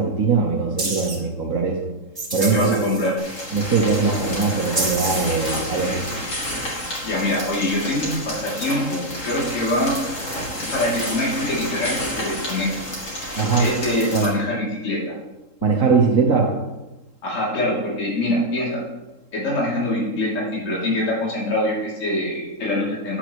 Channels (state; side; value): late; right; 3.8 ms